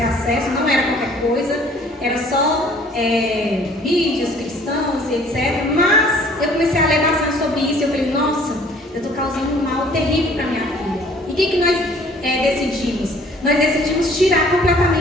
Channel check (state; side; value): normal; both; correlation 0.55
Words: acesso, não era qualquer coisa, era só vídeos cristãos e etc. Mas eu comecei a ler bastante sobre isso e eu falei, nossa, eu estou causando um mal terrível para minha filha. E o que nós decidimos? Nós decidimos tirar